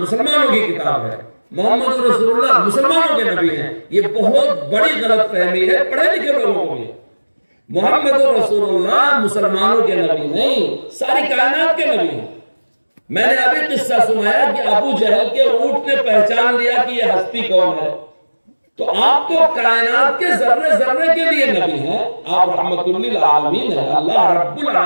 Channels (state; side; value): inverted; both; correlation -1.00